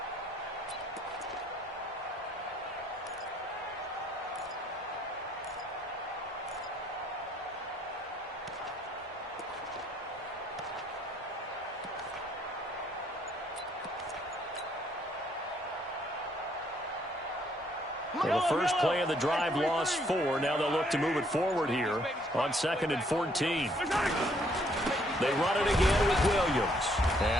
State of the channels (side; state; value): both; normal; correlation 0.67